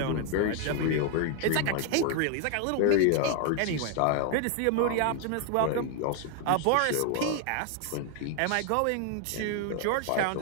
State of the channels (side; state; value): both; different; correlation 0.00